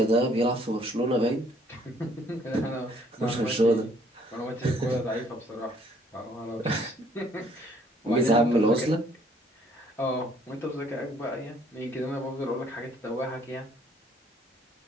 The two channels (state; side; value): normal; both; correlation 0.63